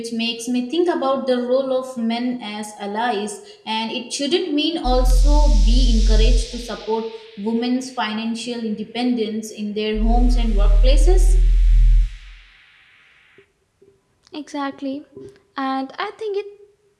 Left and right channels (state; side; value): identical; both; correlation 1.00